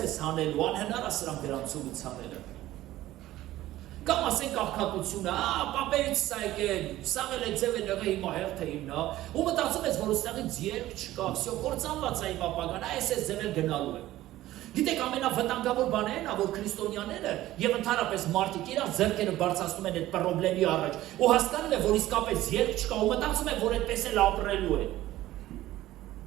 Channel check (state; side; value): quieter; left; 15.3 dB